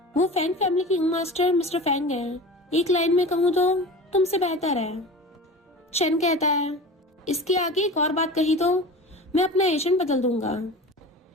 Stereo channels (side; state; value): both; normal; correlation 0.34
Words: वो फैंग फैमिली की यंग मास्टर मिस्टर फैंग है, एक लाइन में कहूँ तो तुमसे बेहतर है। चैन कहता है, इसके आगे एक और बात कही तो मैं अपना एजेंट बदल दूंगा।